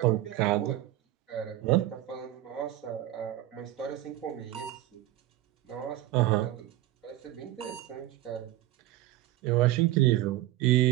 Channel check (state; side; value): quieter; left; 14.9 dB